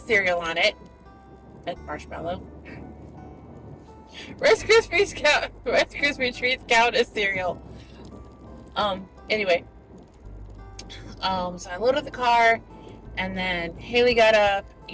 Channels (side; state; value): both; identical; correlation 1.00